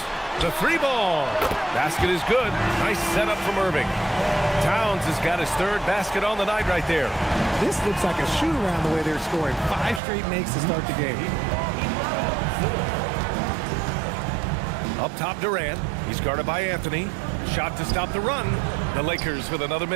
The 3-ball. Basket is good. Nice setup from Irving. Towns has got his 3rd basket on the night right there. This looks like a shoot-around the way they're scoring. 5 straight makes to start the game. Up top, Durant. He's guarded by Anthony. Shot to stop the run. The Lakers with another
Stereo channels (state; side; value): drops out; left; at 10.0 s